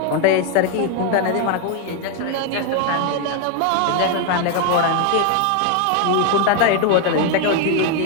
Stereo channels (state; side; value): different; both; correlation 0.01